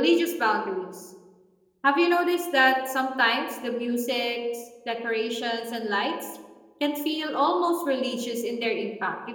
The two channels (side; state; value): both; identical; correlation 1.00